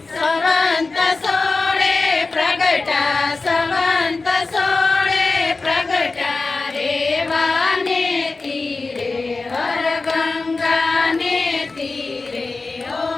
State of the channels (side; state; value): right; quieter; 3.7 dB